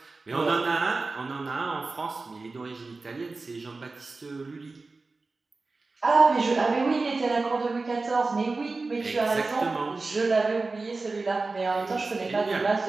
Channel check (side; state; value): left; quieter; 3.7 dB